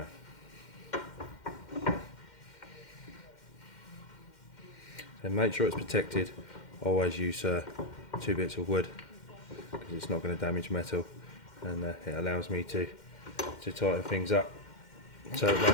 So make sure it's protected. Always use 2 bits of wood, because it's not going to damage metal, and it allows me to tighten things up so it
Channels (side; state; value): right; late; 2.1 ms